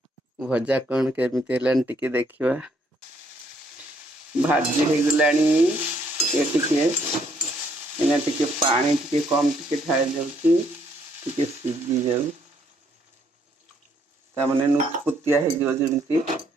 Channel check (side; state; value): both; normal; correlation 0.69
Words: भजा कौन केमिति हेलान टे देखिवा भाजी हो गलानी ये टे इना टे पानी टे कम टे ढाई जाउची टे सीझी जाउ ता माने नुतपुतिया हे जो जेमति